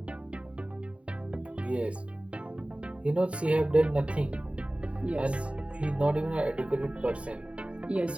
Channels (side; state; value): left; late; 0.062 ms